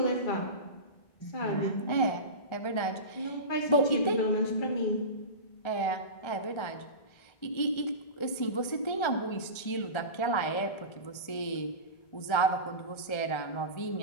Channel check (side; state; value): right; late; 1.3 ms